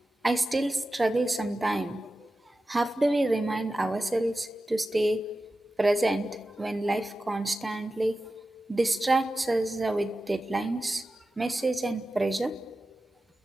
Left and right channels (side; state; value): both; normal; correlation 0.93